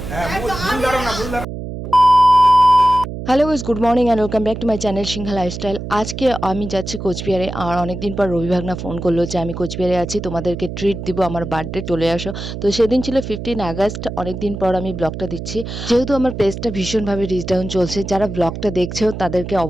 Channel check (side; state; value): right; noise; hum, 8 dB below the sound